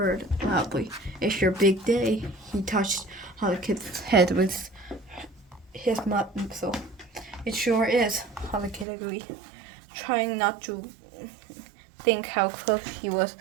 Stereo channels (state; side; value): drops out; left; at 8.8 s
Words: loudly. It's your big day. He touched Hollycat's head with his muzzle. It sure is, Hollycat agreed, trying not to think how close he was